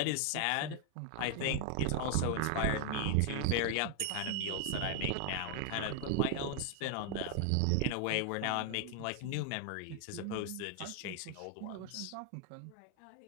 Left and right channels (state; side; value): different; both; correlation 0.00